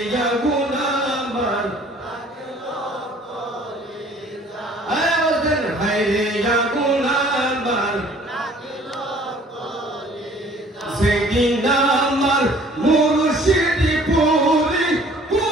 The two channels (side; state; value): both; normal; correlation 0.54